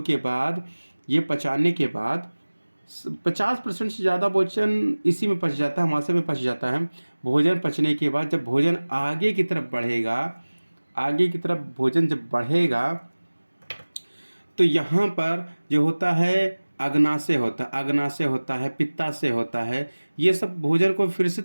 के बाद ये पचाने के बाद 50% से ज़्यादा भोजन इसी में पच जाता है, मासे में पच जाता है। भोजन पचने के बाद जब भोजन आगे की तरफ बढ़ेगा, आगे की तरफ भोजन जब बढ़ेगा तो यहाँ पर जो होता है अग्नाशय होता है, अग्नाशय होता है, पित्ताशय होता है। ये सब भोजन को फिर से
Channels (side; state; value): both; inverted; correlation -1.00